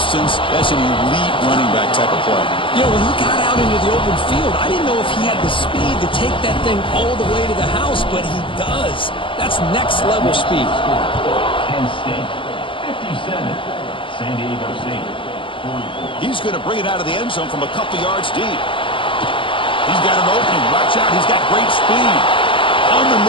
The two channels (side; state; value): right; late; 0.25 ms